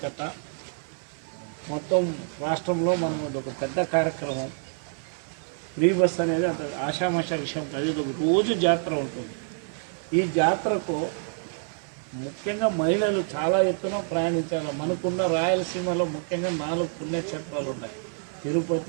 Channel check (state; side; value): silent; left; 60 dB below the other